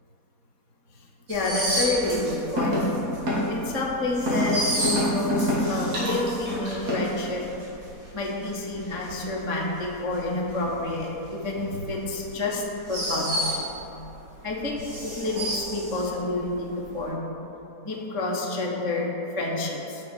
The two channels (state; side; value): late; left; 4.2 ms